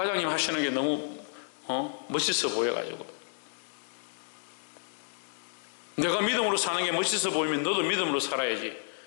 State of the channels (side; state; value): right; silent; digital silence